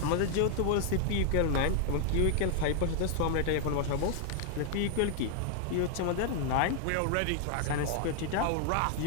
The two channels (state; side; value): different; both; correlation 0.00